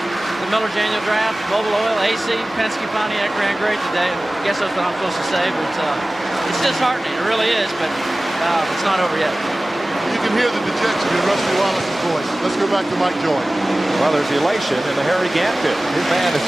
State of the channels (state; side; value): normal; both; correlation 0.97